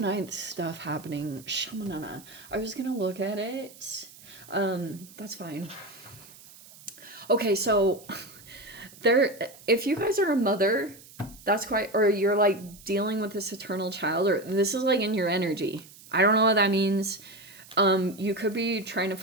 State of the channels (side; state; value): right; noise; hiss, 21 dB below the sound